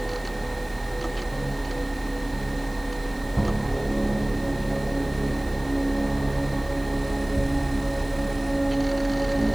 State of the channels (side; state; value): right; noise; hiss, 22 dB below the sound